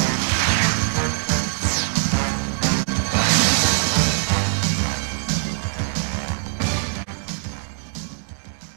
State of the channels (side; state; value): left; silent; digital silence